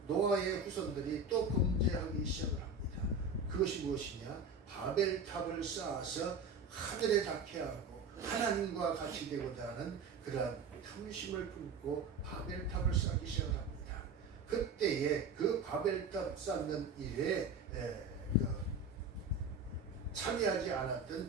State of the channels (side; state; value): left; quieter; 3.9 dB